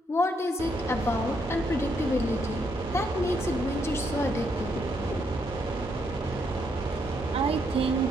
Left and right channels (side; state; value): both; normal; correlation 0.75